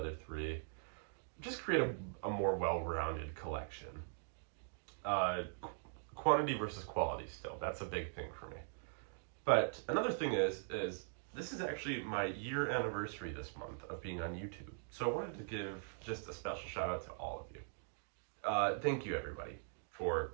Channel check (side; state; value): left; silent; digital silence